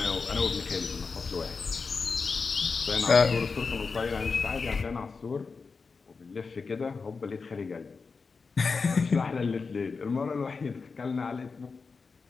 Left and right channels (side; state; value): right; quieter; 4.7 dB